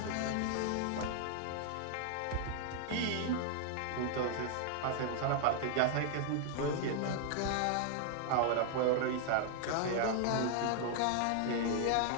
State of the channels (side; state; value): both; different; correlation -0.01